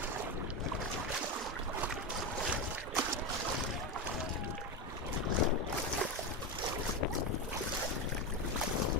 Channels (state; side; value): normal; both; correlation 0.14